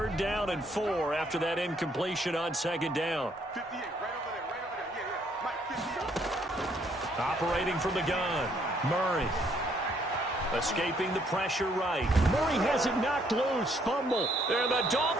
down and 4 after that incompletion on 2nd down. 58, right over there, yeah. Mike, 58. Operating from the gun, Murray. Escaping the pressure right. Murray has it knocked loose, fumble. And the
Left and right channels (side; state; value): both; normal; correlation 0.68